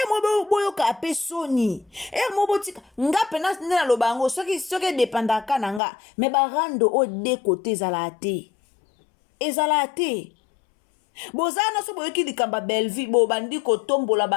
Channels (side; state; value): right; drops out; at 5.8 s